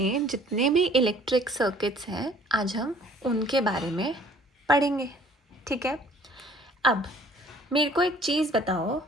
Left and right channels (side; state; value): both; normal; correlation 0.55